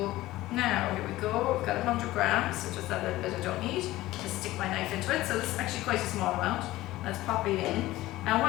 now here we go, we've got 100 grams, so just that little bit I don't need, just stick my knife into it. So this is actually quite a small amount. Let's pop it in. And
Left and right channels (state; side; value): quieter; right; 17.0 dB